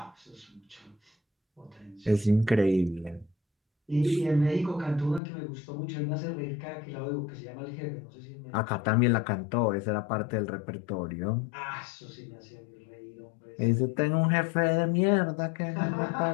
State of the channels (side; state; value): right; drops out; at 5.2 s